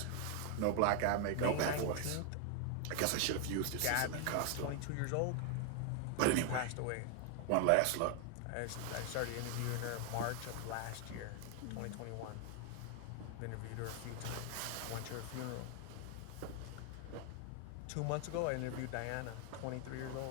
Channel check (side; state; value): both; different; correlation 0.00